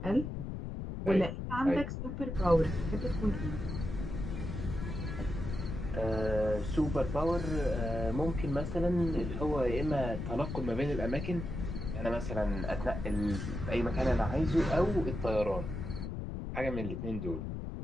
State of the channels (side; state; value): left; noise; rumble, 5 dB below the sound